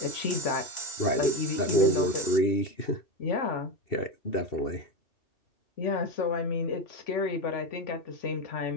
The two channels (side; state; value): right; late; 2.0 ms